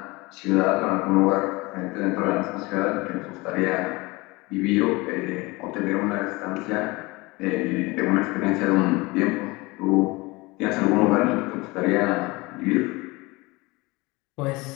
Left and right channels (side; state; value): right; quieter; 23.4 dB